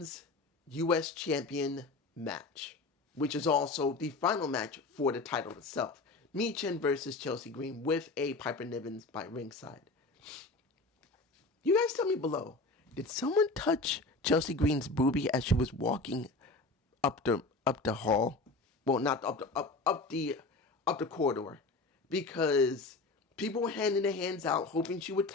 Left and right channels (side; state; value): right; quieter; 3.4 dB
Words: U.S. champion match, which is also the final match for the title itself. Michin versus Chelsea Green with a Piper Niven by ringside. You guys tell me below, did someone touch Chelsea Green's boobie as she was walking up the hall? Well, not up the corridor, because people were handing their hands out, hoping she would